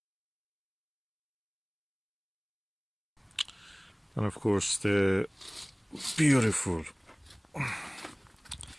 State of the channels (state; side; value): identical; both; correlation 1.00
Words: And of course the beautiful